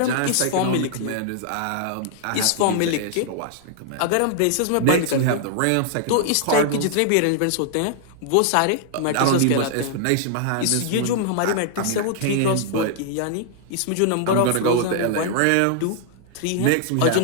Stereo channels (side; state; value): both; different; correlation -0.01